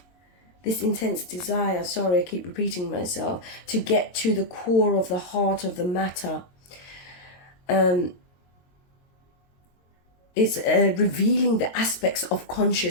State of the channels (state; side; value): late; right; 22 ms